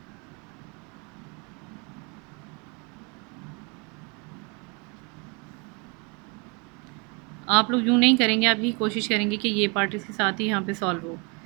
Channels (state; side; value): quieter; left; 32.0 dB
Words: आप लोग यूँ नहीं करेंगे, आप ही कोशिश करेंगे कि ये पार्ट इसके साथ ही यहाँ पे सॉल्व हो,